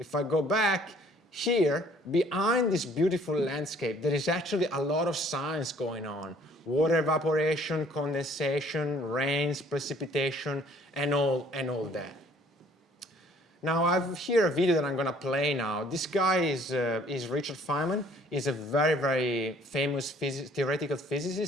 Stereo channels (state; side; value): normal; both; correlation 0.58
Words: I go back, here, behind this beautiful landscape, there is actually a lot of science going on. Water evaporation, condensation, rains, precipitation, and all that. Now, I've here a video that I'm going to play now. This guy is Richard Feynman. He's a very, very famous theoretical